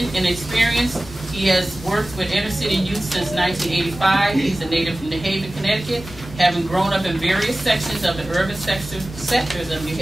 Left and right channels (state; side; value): normal; both; correlation 0.97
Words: and experience. He has worked with inner city youth since 1985. He's a native from New Haven, Connecticut, having grown up in various sections of the urban sectors of New